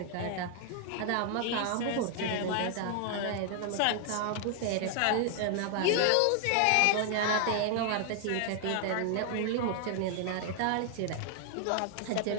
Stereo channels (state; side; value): different; both; correlation 0.00